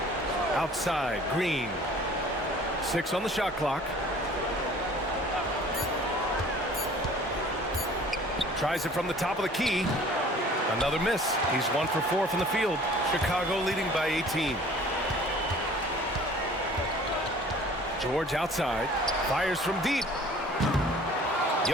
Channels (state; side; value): normal; both; correlation 0.50